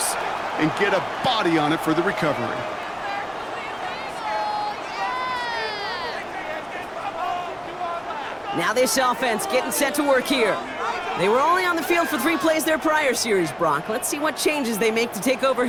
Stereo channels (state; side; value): identical; both; correlation 1.00